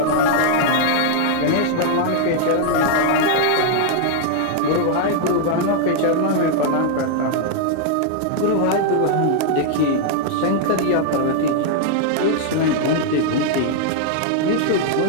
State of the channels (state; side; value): different; both; correlation 0.00